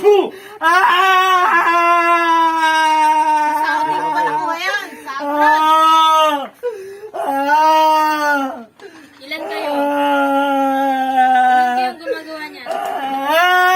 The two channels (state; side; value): identical; both; correlation 1.00